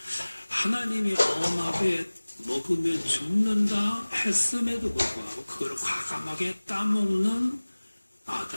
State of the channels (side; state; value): both; inverted; correlation -1.00